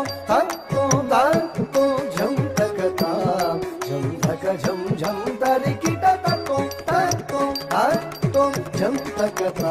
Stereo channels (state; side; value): identical; both; correlation 1.00